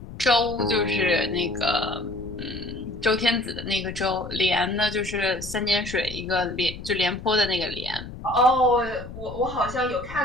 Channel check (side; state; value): left; noise; rumble, 12 dB below the sound